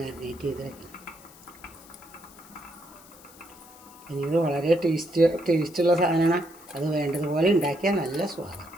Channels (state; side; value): noise; left; hiss, 22 dB below the sound